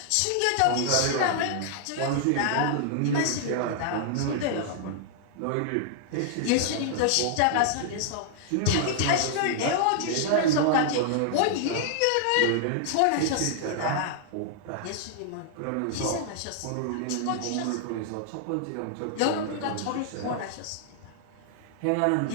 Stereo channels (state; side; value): different; both; correlation -0.01